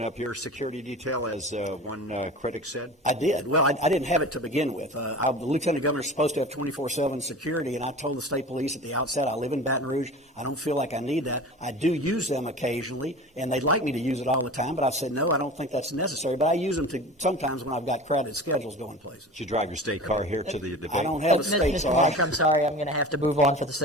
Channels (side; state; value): both; normal; correlation 0.36